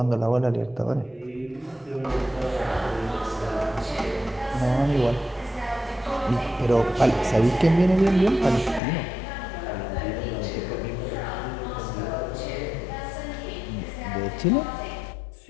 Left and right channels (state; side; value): drops out; right; at 8.8 s